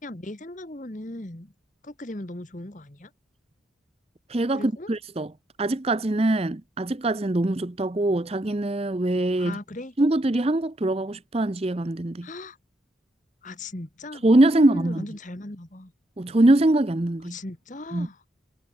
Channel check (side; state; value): both; normal; correlation 0.77